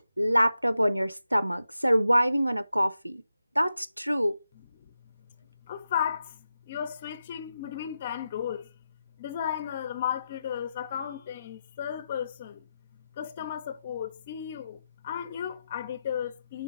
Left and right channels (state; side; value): inverted; both; correlation -0.88